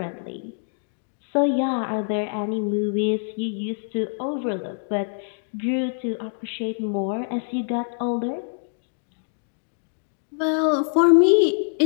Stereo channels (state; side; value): silent; right; digital silence